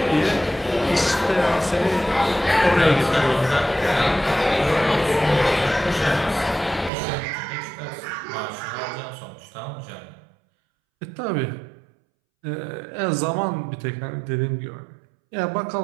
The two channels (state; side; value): drops out; left; at 6.9 s